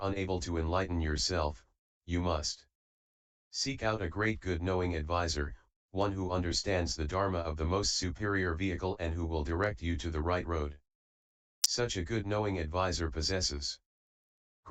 unable to enlighten yourself, you must seek out a great good knowing advisor, one who understands the Dharma of the most superior vehicle and who will direct you to the right road. Such a good knowing advisor possesses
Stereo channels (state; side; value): identical; both; correlation 1.00